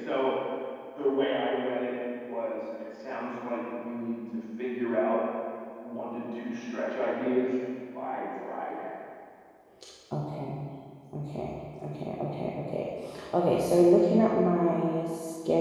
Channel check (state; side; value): identical; both; correlation 1.00